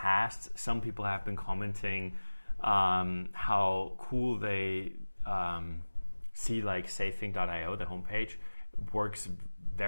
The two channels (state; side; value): inverted; both; correlation -1.00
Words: some people have been commenting how cool they see like safing.io, the homepage, works